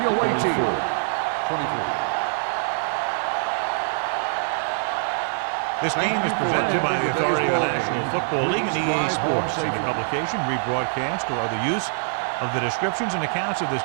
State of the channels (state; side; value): silent; left; digital silence